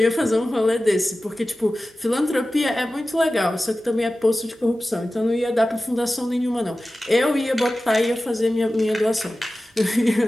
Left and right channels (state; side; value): normal; both; correlation 0.95